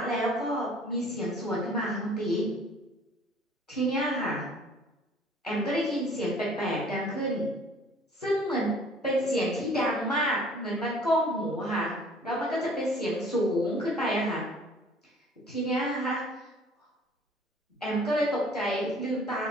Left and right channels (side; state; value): both; normal; correlation 0.53